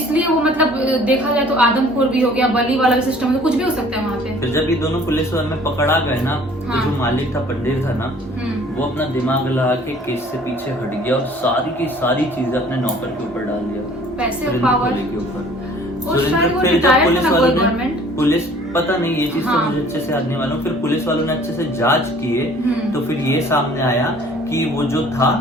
वो मतलब देखा जाए तो आदमखोर भी हो गया। बलि वाला सिस्टम तो कुछ भी हो सकता है वहाँ पे। फिर जब ये दोनों पुलिस वाले में पकड़ा गए ना, तो जो मालिक था, पंडित था ना, वो अपना दिमाग लगा के केस से पीछे हट गया और सारी की सारी चीजें अपने नौकर के ऊपर डाल दिया, पैसे और पावर के ऊपर। पुलिस पता नहीं, ये चीज तो मुझे अच्छे से याद नहीं मालूम। फिर पुलिस वालों ने अच्छे से जांच किए तो फिर ये सामने आया कि वो जो था,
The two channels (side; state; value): both; normal; correlation 0.53